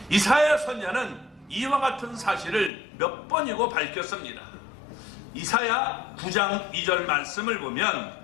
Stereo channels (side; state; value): right; drops out; at 2.7 s